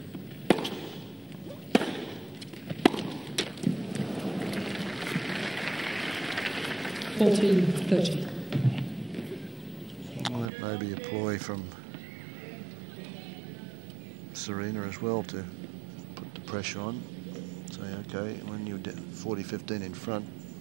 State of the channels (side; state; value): left; drops out; at 10.5 s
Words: Well, that may be a ploy from Serena as well to put the pressure on. Say, okay, when you're 40-15 in front,